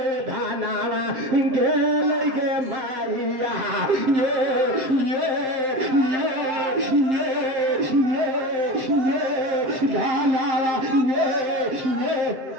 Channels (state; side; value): late; left; 7.6 ms